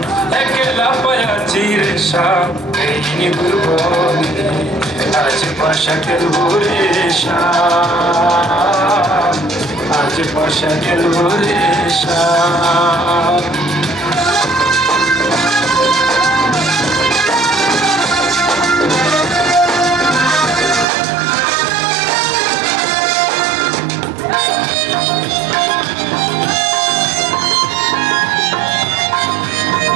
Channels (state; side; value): drops out; left; at 20.9 s